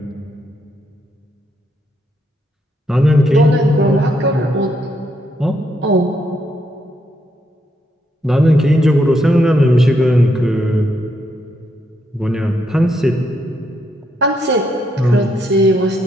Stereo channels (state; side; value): normal; both; correlation 0.77